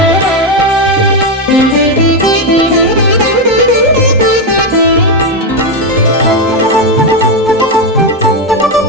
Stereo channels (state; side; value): normal; both; correlation 0.07